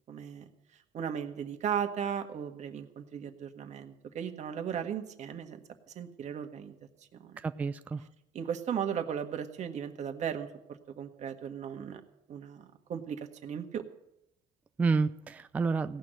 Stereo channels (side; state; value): left; quieter; 6.0 dB